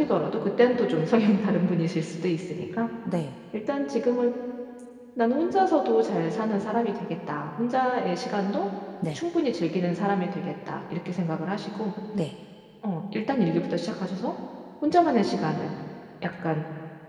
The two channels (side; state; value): both; identical; correlation 1.00